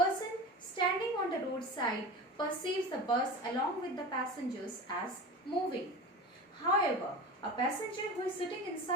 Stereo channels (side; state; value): both; normal; correlation 0.31